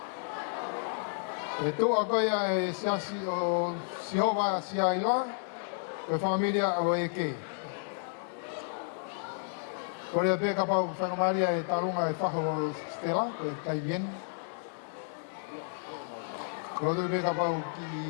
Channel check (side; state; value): right; silent; digital silence